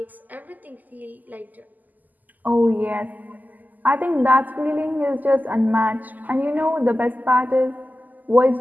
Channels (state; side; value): late; left; 0.083 ms